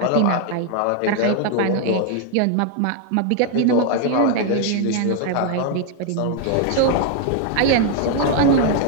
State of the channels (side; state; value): both; different; correlation 0.00